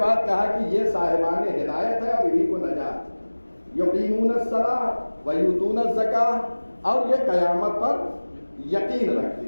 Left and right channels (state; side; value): inverted; both; correlation -1.00